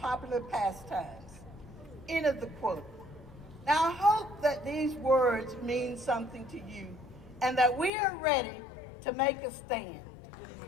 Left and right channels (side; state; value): right; drops out; at 7.9 s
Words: pastimes. End of the quote. Now I hope that these words mean something to you and that we are ready to make a stand.